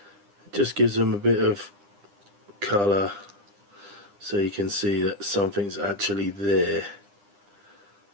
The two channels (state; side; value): late; left; 9.9 ms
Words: It just gives them a bit of colour so you can see that something's actually there.